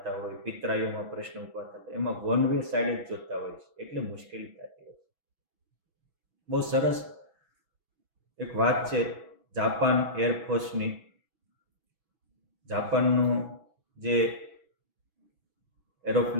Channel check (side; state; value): left; late; 6.1 ms